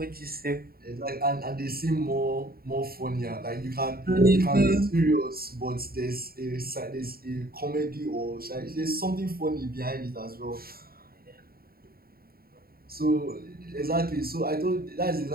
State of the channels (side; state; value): left; late; 0.44 ms